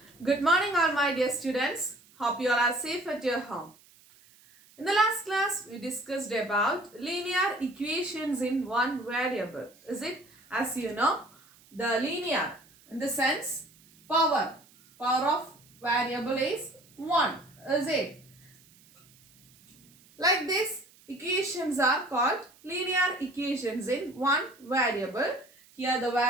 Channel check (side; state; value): right; noise; hiss, 27 dB below the sound